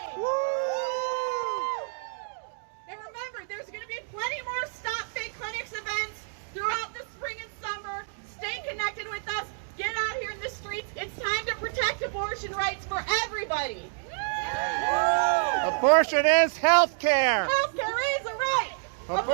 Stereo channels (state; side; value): silent; left; digital silence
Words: And remember, there's going to be plenty more Stop Fake Clinics events throughout the spring and summer. Stay connected with us. Get out here in the streets. It's time to protect abortion rights for everybody. Abortion is health care. Health care is a right.